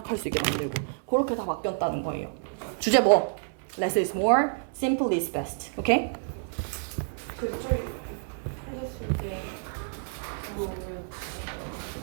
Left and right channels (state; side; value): silent; left; 59 dB below the other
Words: 수 있게 만들고 그렇게 다 바뀌었다는 거예요. 주제 뭐? Less is more, simple is best. 오케이? 그쪽에 해줬을 때